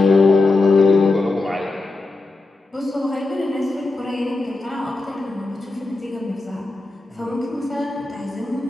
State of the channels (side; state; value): right; quieter; 3.3 dB